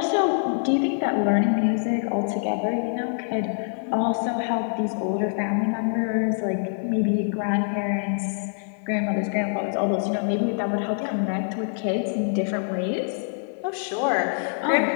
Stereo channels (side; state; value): right; silent; 59 dB below the other